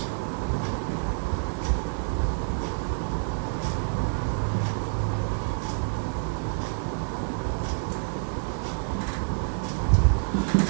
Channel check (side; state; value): left; silent; 60 dB below the other